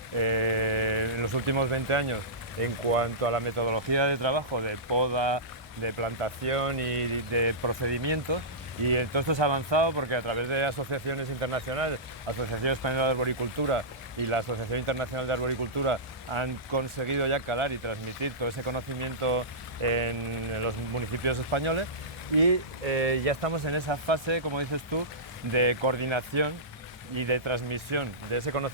en los últimos 20 años en cuanto a la metodología de trabajo, de poda, de plantación y de procedimientos. Y todo esto se ha avanzado porque a través de asociaciones internacionales, Asociación Española de Arboricultura y la Asociación Internacional de Arboricultura, han conseguido ya calar y transmitir todo ese conocimiento en los municipios españoles y ya estamos en esa fase, como dices tú, de coordinación y de transmisión de ese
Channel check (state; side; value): normal; both; correlation -0.18